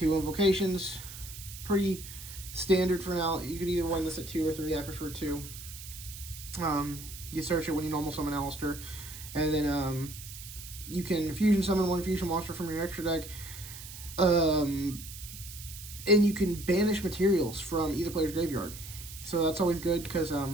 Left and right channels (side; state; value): right; noise; hiss, 13 dB below the sound